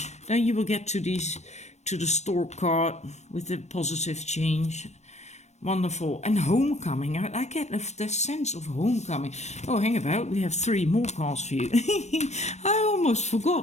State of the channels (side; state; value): right; late; 0.33 ms